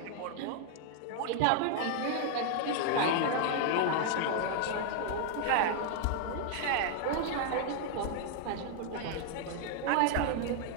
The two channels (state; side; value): different; both; correlation 0.00